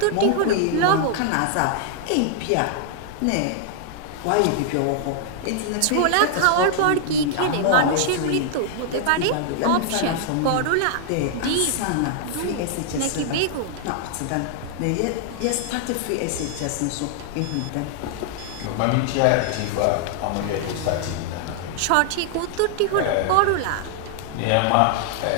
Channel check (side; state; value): both; different; correlation 0.00